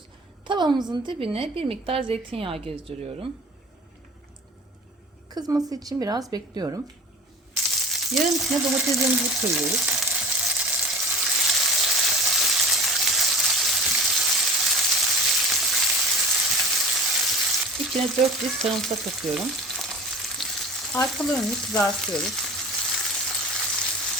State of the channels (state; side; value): normal; both; correlation 0.39